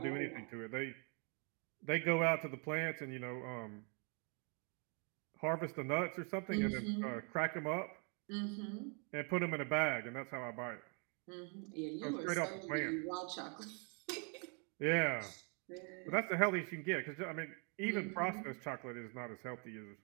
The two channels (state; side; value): quieter; left; 37.0 dB